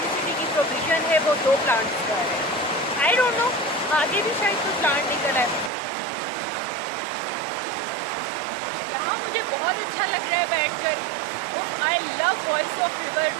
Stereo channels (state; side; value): drops out; left; at 5.7 s